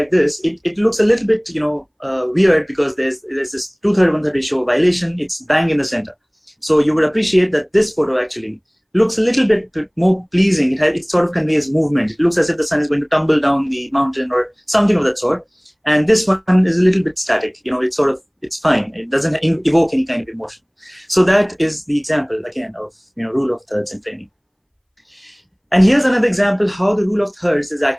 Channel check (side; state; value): both; identical; correlation 1.00